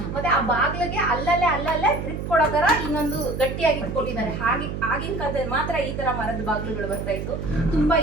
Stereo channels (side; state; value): right; noise; hum, 5 dB below the sound